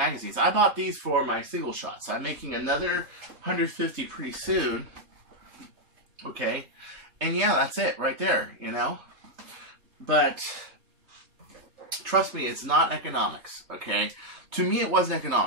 I bought these for my single shots. I'm making another 150 pretty soon, okay? And yeah, that's it right there, you know? But trust me, it's not economics, okay? To me, it wasn't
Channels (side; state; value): left; late; 3.2 ms